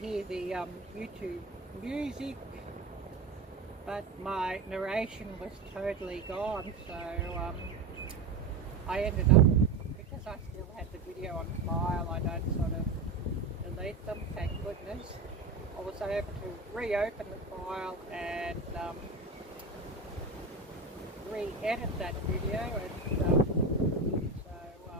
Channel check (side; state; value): left; quieter; 3.6 dB